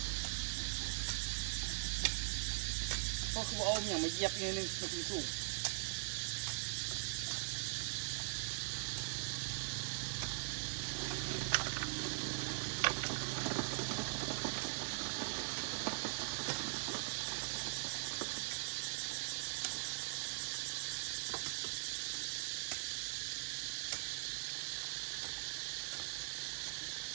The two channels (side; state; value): left; silent; digital silence